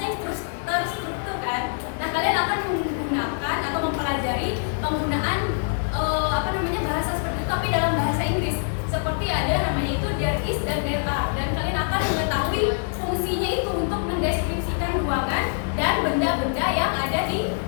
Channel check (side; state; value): right; silent; 56 dB below the other